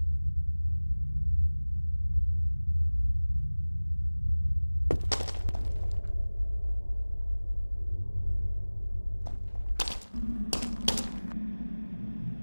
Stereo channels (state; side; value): inverted; both; correlation -1.00